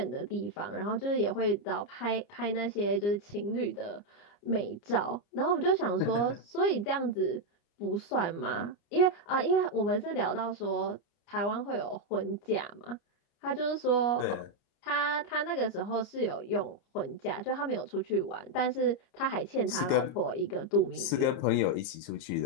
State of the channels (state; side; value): late; right; 30 ms